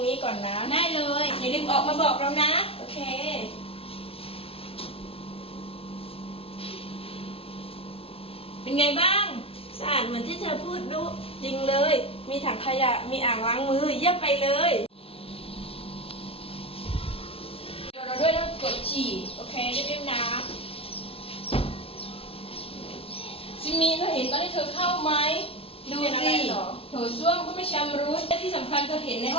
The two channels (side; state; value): right; late; 0.27 ms